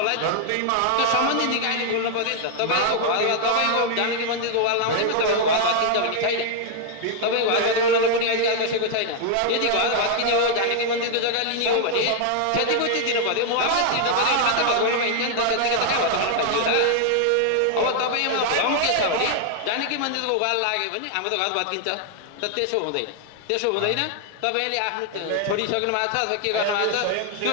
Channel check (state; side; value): different; both; correlation 0.00